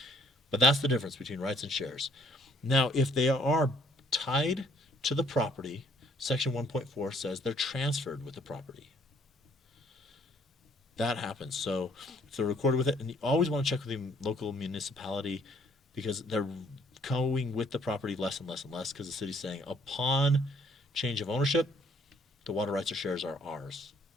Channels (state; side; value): normal; both; correlation 0.62